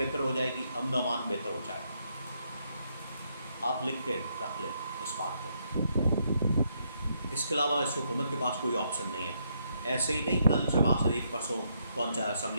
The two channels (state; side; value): inverted; both; correlation -0.76